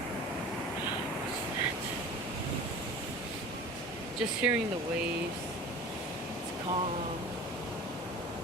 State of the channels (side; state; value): both; normal; correlation 0.38